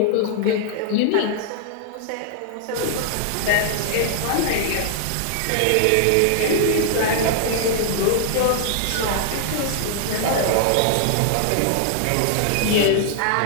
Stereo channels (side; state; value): both; different; correlation -0.01